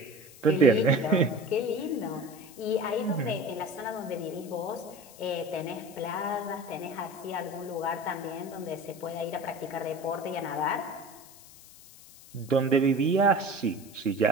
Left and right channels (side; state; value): left; noise; hiss, 20 dB below the sound